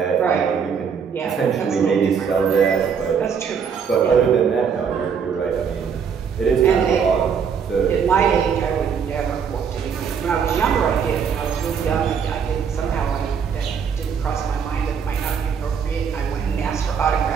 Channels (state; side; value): quieter; left; 6.8 dB